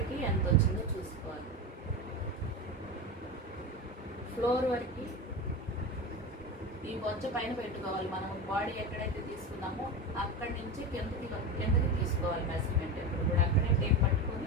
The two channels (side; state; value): both; normal; correlation 0.22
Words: ఎంత వచ్చిందో చూసుకోవాలి. ఫ్లోర్ వరకు ఈ బొజ్జ పైన పెట్టుకోవాలి. మనం బాడీ ఎక్కడైతే తీసుకున్నామో అక్కడి నుంచి కిందకి తీసుకోవాలి మెజర్మెంట్. ఎప్పుడు కూడా అక్కడే టేప్